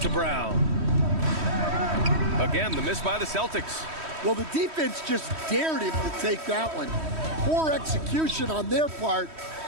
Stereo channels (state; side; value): late; left; 3.1 ms